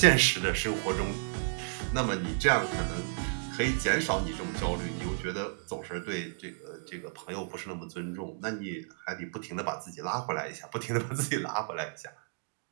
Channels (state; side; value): silent; left; digital silence